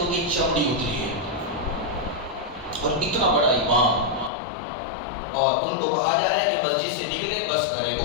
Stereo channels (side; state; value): right; drops out; at 4.3 s